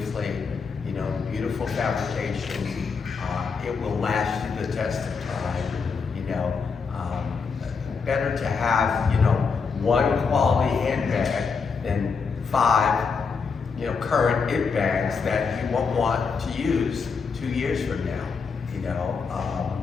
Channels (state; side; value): quieter; right; 5.3 dB